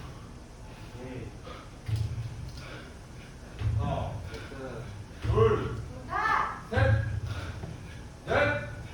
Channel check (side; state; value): both; identical; correlation 1.00